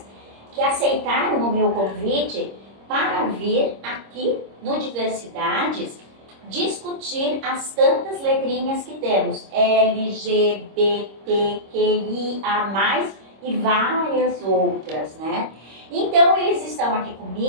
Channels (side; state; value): left; late; 26 ms